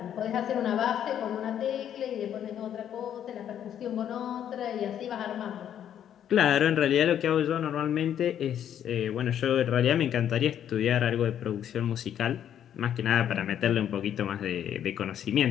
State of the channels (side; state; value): right; quieter; 9.9 dB